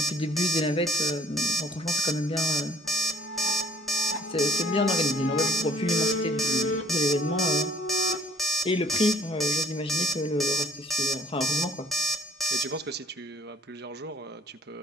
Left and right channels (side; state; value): both; normal; correlation 0.60